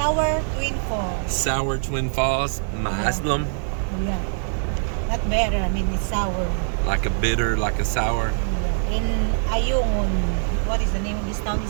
Twin Falls. Sour Twin Falls Muslim. Yeah. Not better, I mean it's sour. Like a bitter, like a sour. In Ayungin. What is the name of this town?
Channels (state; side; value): silent; left; 56 dB below the other